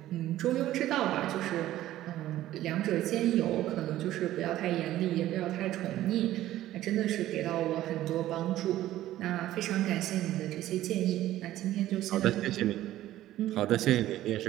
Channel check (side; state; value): left; quieter; 14.2 dB